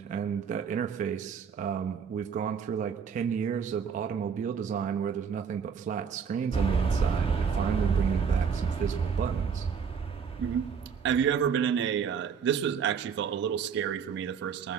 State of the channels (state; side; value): quieter; left; 6.6 dB